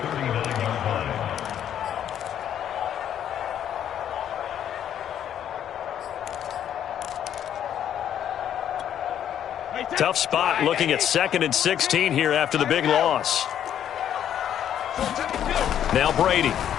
Tough spot looking at 2nd and 16 here after the big loss. Now Brady.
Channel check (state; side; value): quieter; right; 10.0 dB